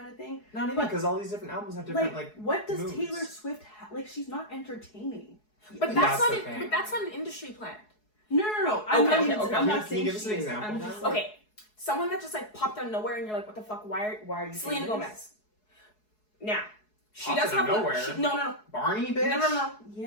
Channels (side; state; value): right; late; 4.7 ms